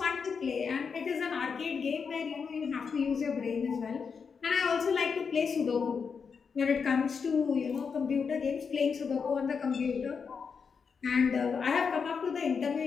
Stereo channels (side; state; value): right; quieter; 5.8 dB